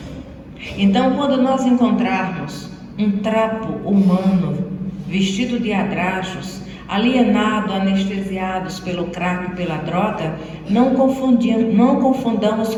Então, quando nós encontrarmos um trapo humano vestido de adrajos, alienado, anestesiados pelo crack e pela droga, não confundamos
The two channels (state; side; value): identical; both; correlation 1.00